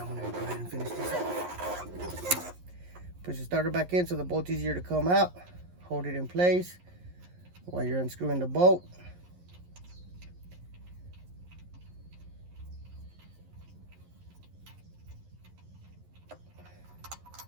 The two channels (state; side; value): late; left; 11 ms